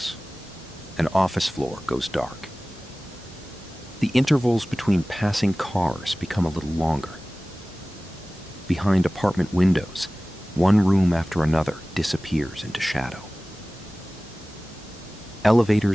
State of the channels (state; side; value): normal; both; correlation 0.98